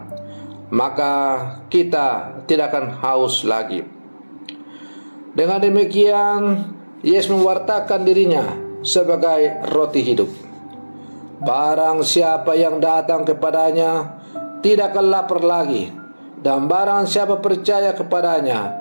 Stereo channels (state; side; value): inverted; both; correlation -1.00